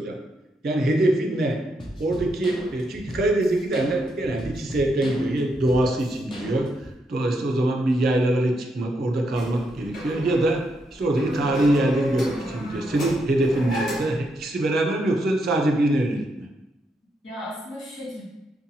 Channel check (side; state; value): both; normal; correlation 0.80